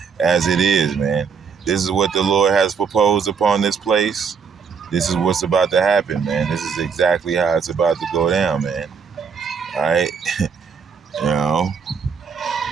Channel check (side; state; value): left; quieter; 6.0 dB